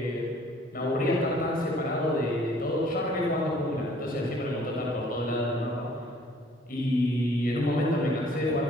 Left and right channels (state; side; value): normal; both; correlation 0.57